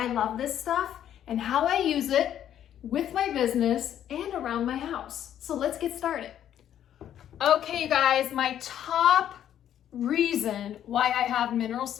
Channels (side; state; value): right; quieter; 10.6 dB